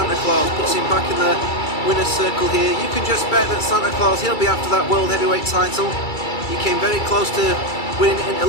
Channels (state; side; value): late; right; 2.3 ms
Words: Claus, puts him back in the winner's circle here. You can just bet that Santa Claus, he'll be after that World Heavyweight title. He came very close to winning in